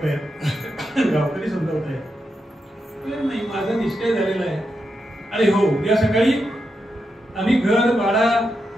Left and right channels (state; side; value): normal; both; correlation 0.86